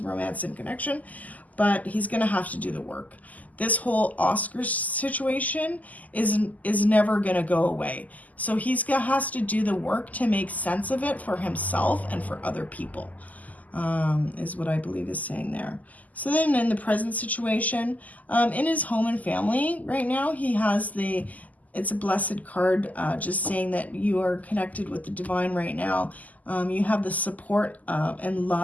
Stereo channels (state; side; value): late; right; 0.078 ms